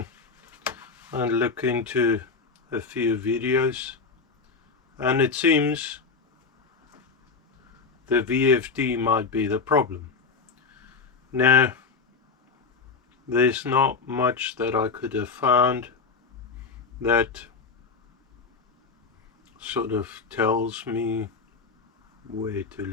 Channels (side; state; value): right; quieter; 4.7 dB